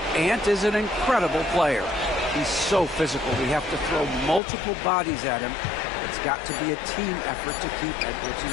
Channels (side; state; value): right; drops out; at 4.4 s